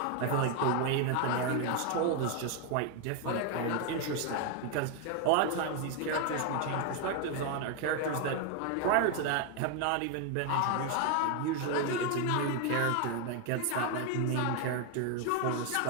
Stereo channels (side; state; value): both; different; correlation 0.01